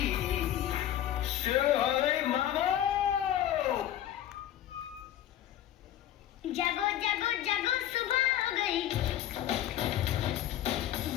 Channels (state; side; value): quieter; right; 12.0 dB